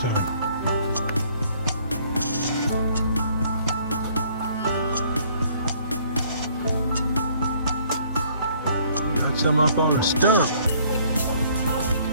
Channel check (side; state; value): both; inverted; correlation -0.61